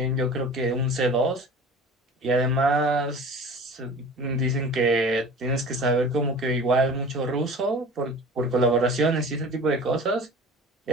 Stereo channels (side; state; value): both; normal; correlation 0.40